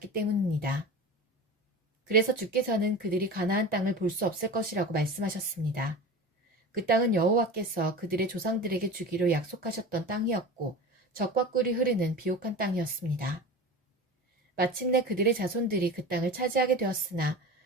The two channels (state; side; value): normal; both; correlation 0.32